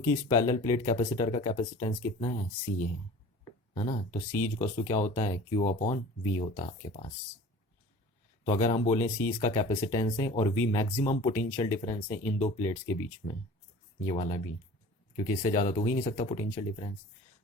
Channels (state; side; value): normal; both; correlation 0.42